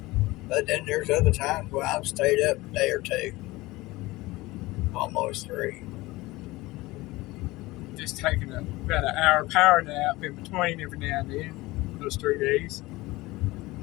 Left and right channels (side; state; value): right; quieter; 20.3 dB